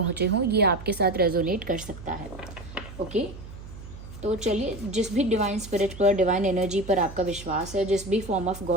हों, ये आपके साथ रेजोनेट कर सकता है। ओके, तो चलिए, जिस भी डिवाइन स्पिरिट पर, डिवाइन एनर्जी पर आपका विश्वास है, जिस भी फॉर्म ऑफ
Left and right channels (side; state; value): right; noise; hum, 14 dB below the sound